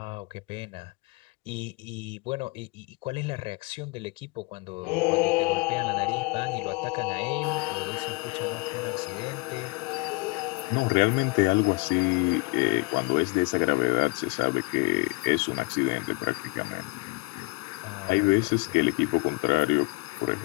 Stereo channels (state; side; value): quieter; right; 26.7 dB